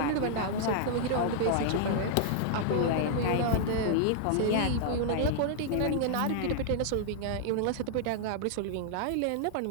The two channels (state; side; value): different; both; correlation -0.01